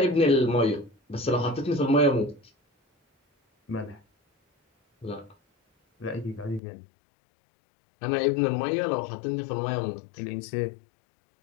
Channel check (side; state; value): right; drops out; at 6.6 s